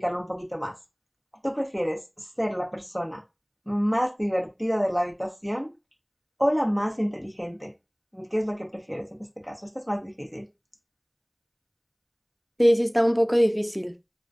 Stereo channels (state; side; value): identical; both; correlation 1.00